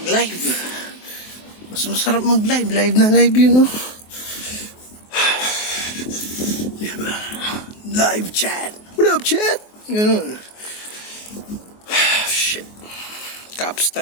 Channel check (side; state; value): right; late; 23 ms